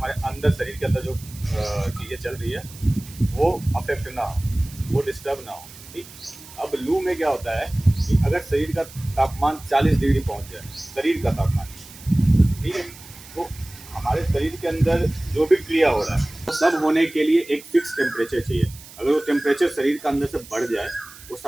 अंदर शरीर के अंदर जो चीज़ें चल रही है वो अफेक्ट ना हो, वो डिस्टर्ब ना हो। ठीक। अब लू में क्या होता है कि अगर शरीर का तापमान 40 डिग्री पहुंच जाए, शरीर का तापमान, ठीक है, तो हमारे शरीर के अंदर जो भी क्रिया हो रहा है वो सब होने के लिए एक फिक्स टेम्परेचर चाहिए। अगर वो टेम्परेचर शरीर का अंदर से बढ़ जाए, वो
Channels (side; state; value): right; noise; hiss, 18 dB below the sound